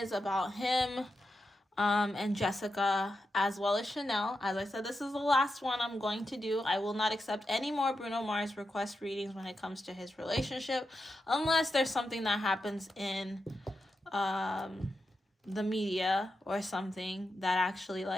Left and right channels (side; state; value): both; normal; correlation 0.88